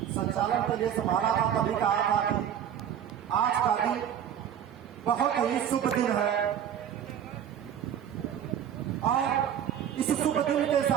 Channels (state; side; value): quieter; left; 9.5 dB